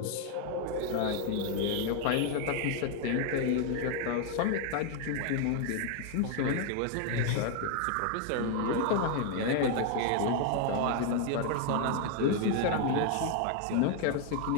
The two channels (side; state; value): both; different; correlation 0.00